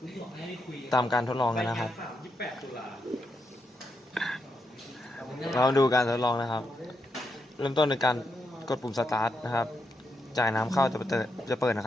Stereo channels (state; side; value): normal; both; correlation 0.83